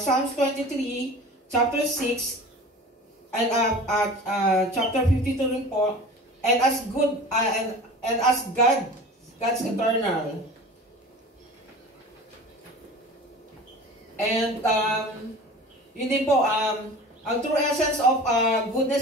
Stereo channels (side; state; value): both; normal; correlation 0.38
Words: 23, chapter 6, and chapter 52 rin po, and as good, and as God's eternal. And yun din po, ang true essence of